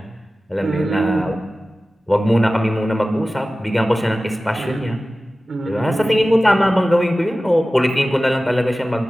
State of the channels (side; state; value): both; normal; correlation 0.96